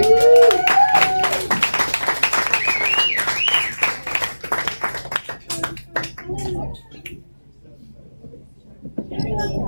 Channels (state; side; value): inverted; both; correlation -1.00